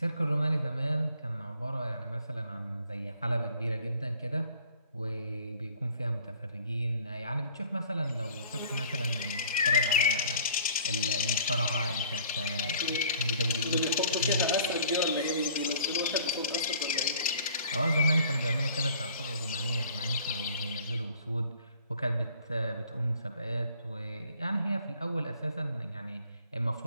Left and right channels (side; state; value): both; inverted; correlation -0.53